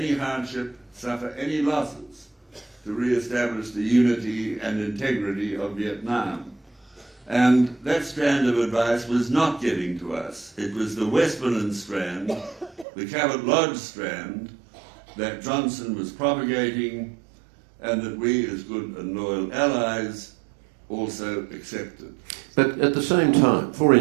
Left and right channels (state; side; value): drops out; left; at 12.9 s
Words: hardship, suffer any losses, to re-establish the unity and integrity of Vietnam. And that strand of advice was not getting to us. It was the Westmoreland strand, the Cabot Lodge strand, that Johnson was propagating, and that we, as good and loyal allies, also accepted. But at the same time, for